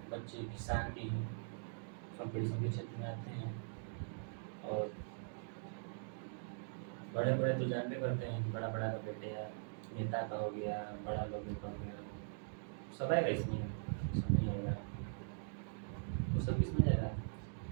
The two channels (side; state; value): left; silent; digital silence